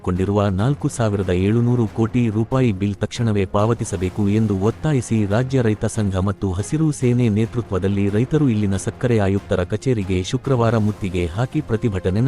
4,700 ಕೋಟಿ ರೂಪಾಯಿ ಬಿಲ್ ತಕ್ಷಣವೇ ಪಾವತಿಸಬೇಕು ಎಂದು ಒತ್ತಾಯಿಸಿ ರಾಜ್ಯ ರೈತ ಸಂಘ ಮತ್ತು ಹಸಿರು ಸೇನೆ ನೇತೃತ್ವದಲ್ಲಿ ರೈತರು ಇಲ್ಲಿನ ಸಕ್ಕರೆ ಆಯುಕ್ತರ ಕಚೇರಿಗೆ ಶುಕ್ರವಾರ ಮುತ್ತಿಗೆ ಹಾಕಿ ಪ್ರತಿಭಟನೆ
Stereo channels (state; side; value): identical; both; correlation 1.00